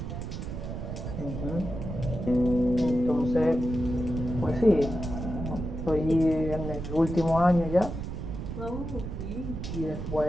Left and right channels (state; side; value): noise; right; rumble, 6 dB below the sound